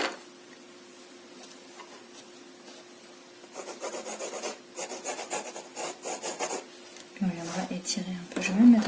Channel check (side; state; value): both; identical; correlation 1.00